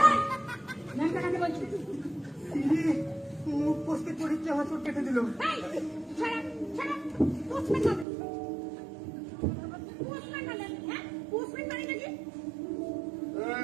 ন্যাংটা কাকে বলছি? ইরে, মুখ পোস্টে পরীক্ষা হাসর কেটে দিল।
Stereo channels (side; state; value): left; drops out; at 8.1 s